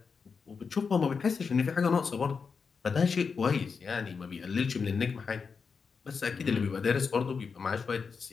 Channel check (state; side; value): quieter; right; 5.5 dB